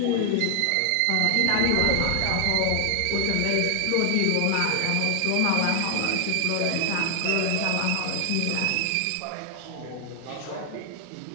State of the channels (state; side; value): different; both; correlation 0.00